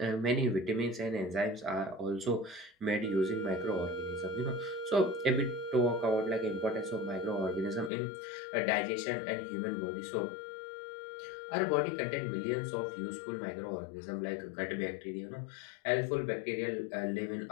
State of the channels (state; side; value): drops out; right; at 7.9 s